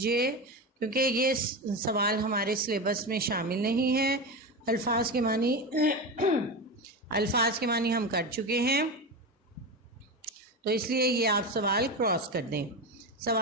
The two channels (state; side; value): normal; both; correlation 0.20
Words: کیونکہ یہ سوال ہمارے سلیبس میں شامل نہیں ہے۔ الفاظ کے معنی ہم کر چکے ہیں، تو اس لیے یہ آپ سوال کراس کر دیں۔